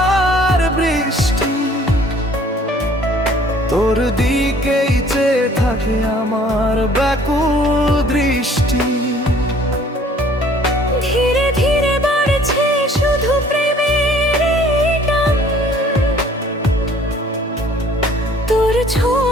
বৃষ্টি, তোর দিকেই চেয়ে থাকে আমার ব্যাকুল দৃষ্টি। ধীরে ধীরে বাড়ছে শুধু প্রেমের এই টান, তোর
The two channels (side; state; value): both; normal; correlation 0.55